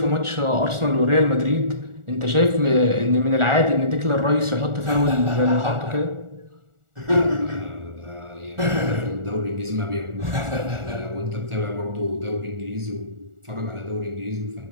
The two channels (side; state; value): left; late; 1.4 ms